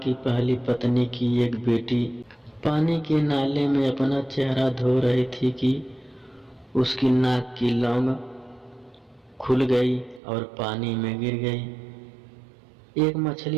पहली पत्नी की एक बेटी पानी के नाले में अपना चेहरा धो रही थी कि उसकी नाक की लौंग खुल गई और पानी में गिर गई। एक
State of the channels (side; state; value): left; drops out; at 10.2 s